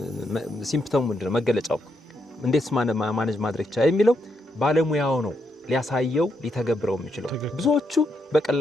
ሲምፕተሙ ምንድነው? መገለጫው እንዴት ማኔጅ ማድረግ ይቻላል የሚለው ባለሙያው ነው ሊያሳየው ሊተገብረው የሚችለው። ብዙዎቹ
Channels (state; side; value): normal; both; correlation 0.79